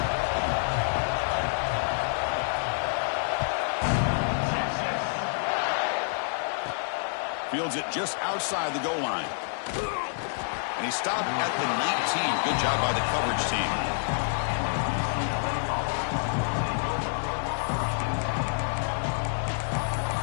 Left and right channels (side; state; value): right; silent; digital silence